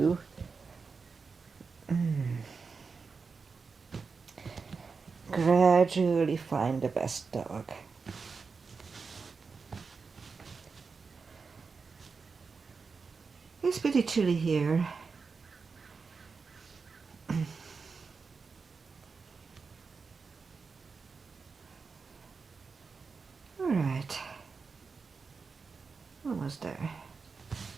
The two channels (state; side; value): quieter; left; 4.9 dB